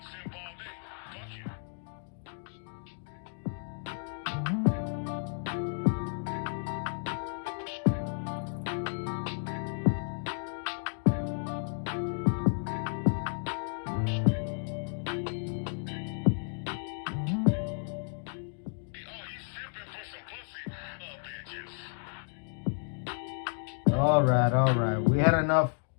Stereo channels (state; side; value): silent; right; 56 dB below the other